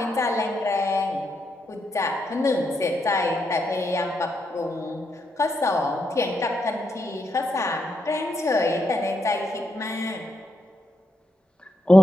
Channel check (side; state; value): both; normal; correlation 0.81